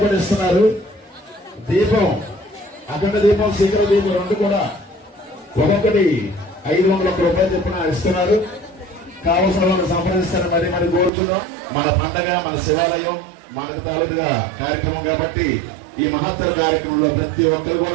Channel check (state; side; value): drops out; left; at 11.1 s